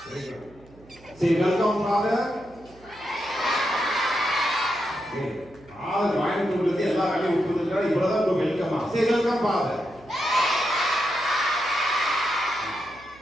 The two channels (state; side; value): noise; right; hum, 25 dB below the sound